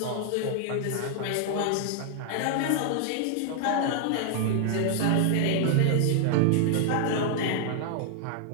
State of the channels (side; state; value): both; different; correlation 0.00